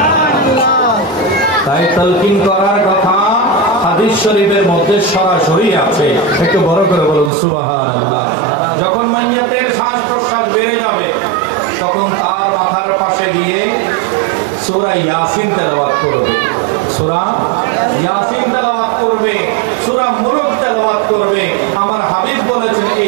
তাই তালকিন করার কথা হাদিস শরীফের মধ্যে সরাসরি আছে। একটু বড় করে বলুন সুবহানাল্লাহ। যখন মাইয়তের শ্বাস প্রশ্বাস বেড়ে যাবে তখন তার মাথার পাশে গিয়ে সূরা ইয়াসিন তেলাওয়াত করবে, সূরা ইয়াসিন তেলাওয়াত করবে, সূরা মুলক তেলাওয়াত করবে। আমার হাবিব বলেছেন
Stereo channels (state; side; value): drops out; left; at 7.3 s